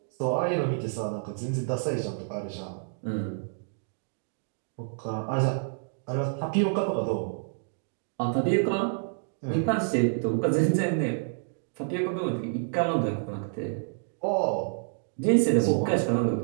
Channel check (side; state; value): left; silent; digital silence